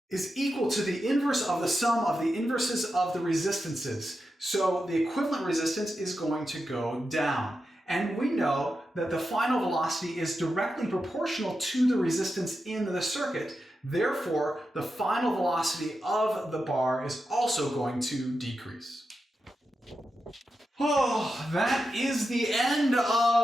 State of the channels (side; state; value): both; normal; correlation 0.89